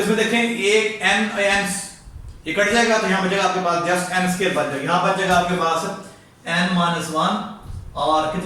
इसमें देखें एक n ये कट जाएगा तो यहाँ बचेगा आपके पास जस्ट n स्क्वायर बच जाएगा, यहाँ बच जाएगा आपके पास n-1 और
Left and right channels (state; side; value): identical; both; correlation 1.00